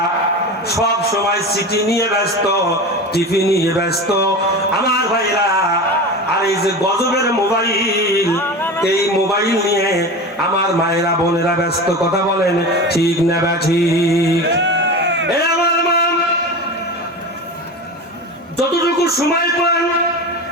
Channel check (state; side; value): normal; both; correlation 0.28